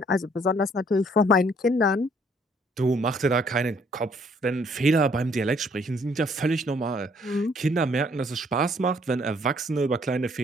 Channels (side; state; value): both; normal; correlation 0.63